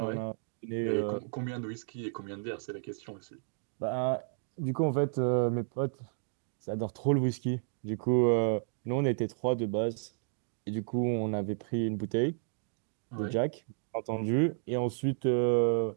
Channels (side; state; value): left; silent; digital silence